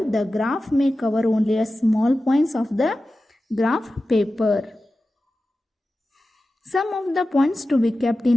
graph may cover only a small points of the graph paper. Some of the points to be kept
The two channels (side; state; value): both; normal; correlation 0.94